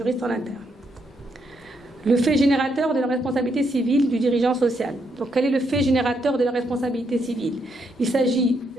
en interne. Le fait générateur de la responsabilité civile du dirigeant social. Donc quel est le fait générateur de la responsabilité civile ? Il s'agit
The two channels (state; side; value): normal; both; correlation 0.77